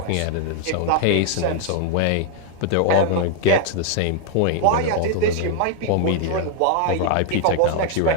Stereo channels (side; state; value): both; different; correlation 0.00